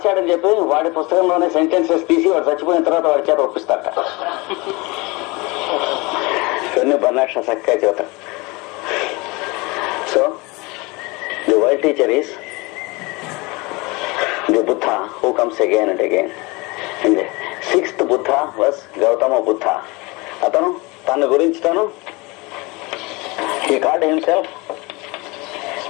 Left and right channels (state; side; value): quieter; right; 25.4 dB